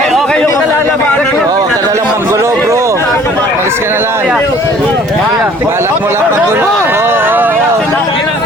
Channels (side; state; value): both; normal; correlation 0.54